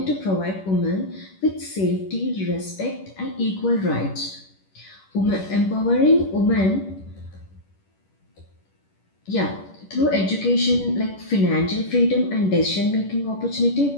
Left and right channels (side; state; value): right; late; 10 ms